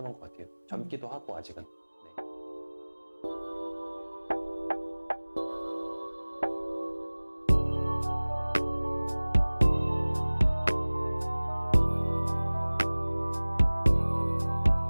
것 같아요. 젊기도 하고 아직은. 네.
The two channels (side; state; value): both; inverted; correlation -1.00